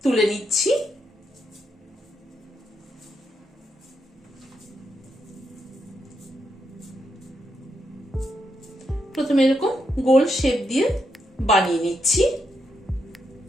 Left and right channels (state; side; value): normal; both; correlation 0.81